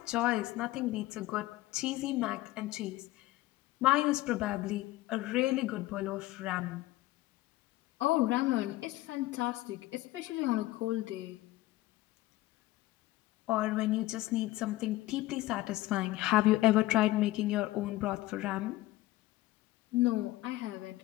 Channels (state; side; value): quieter; right; 17.6 dB